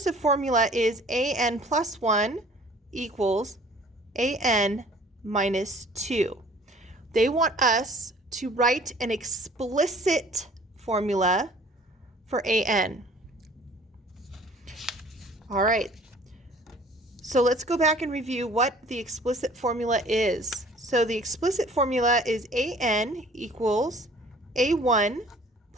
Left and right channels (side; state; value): both; normal; correlation 0.52